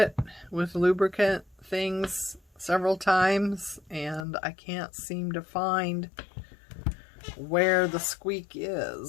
with lubricant things several times, and I can't seem to find where the squeak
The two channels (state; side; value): drops out; right; at 4.2 s